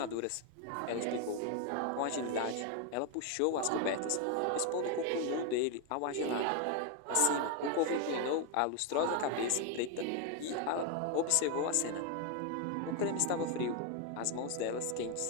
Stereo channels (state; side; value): different; both; correlation 0.01